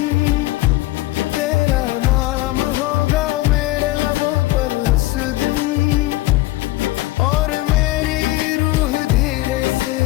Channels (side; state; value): right; quieter; 18.0 dB